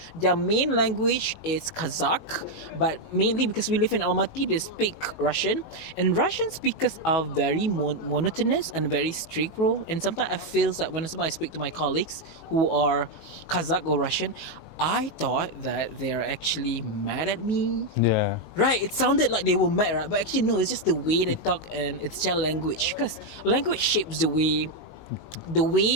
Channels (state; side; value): late; right; 19 ms